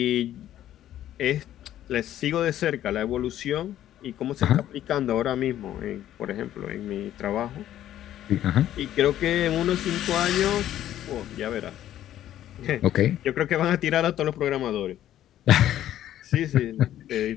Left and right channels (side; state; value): right; quieter; 12.2 dB